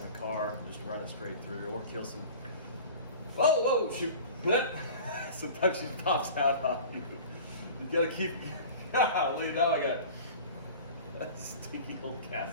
a car, just run it straight through, or kill some. Whoa, shoot. Sometimes she pops out on you. You gotta keep, golly, now I got that stinky old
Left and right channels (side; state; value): both; inverted; correlation -0.39